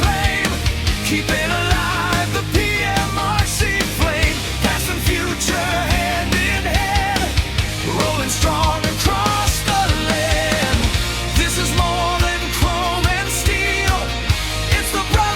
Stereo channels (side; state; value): both; identical; correlation 1.00